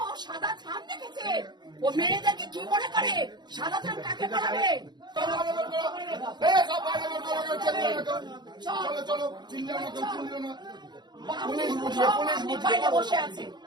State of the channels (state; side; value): late; left; 0.21 ms